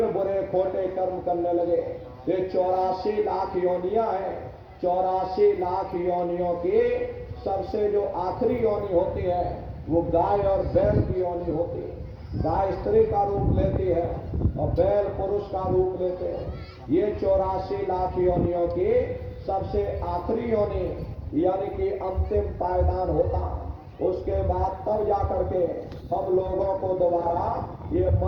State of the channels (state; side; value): identical; both; correlation 1.00